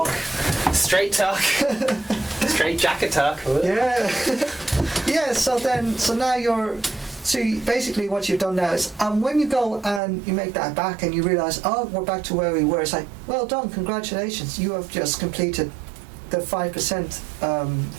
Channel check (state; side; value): drops out; left; at 10.0 s